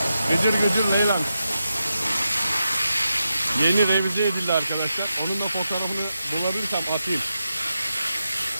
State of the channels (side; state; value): both; inverted; correlation -0.88